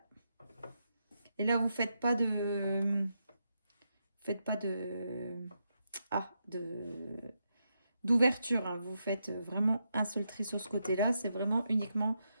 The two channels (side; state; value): both; inverted; correlation -0.83